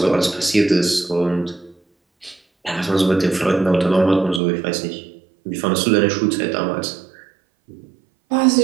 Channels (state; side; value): drops out; left; at 4.4 s